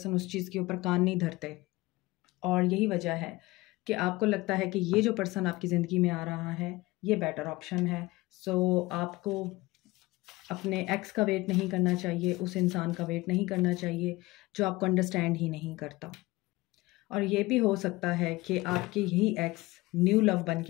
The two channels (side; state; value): right; quieter; 20.5 dB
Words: उस चीज़ के ऊपर कान नहीं धरते। और यही वजह है कि आपको लगता है कि ये जो पर्सन आपकी ज़िंदगी में आ रहा है ये बेटर ऑप्शन है। सो आपको अपने एक्स का वेट नहीं करना चाहिए, उस इंसान का वेट नहीं करना चाहिए जो आपको अंडरस्टैंड ही नहीं करता। और ये भी हो सकता है कि आपके ही एक्स न्यू लव बन